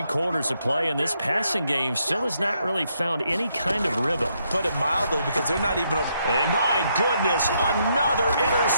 quarters of play, and this passing game still has not really found any kind of rhythm. Put it mildly, because they're not even... And my goodness, another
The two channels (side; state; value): both; inverted; correlation -0.76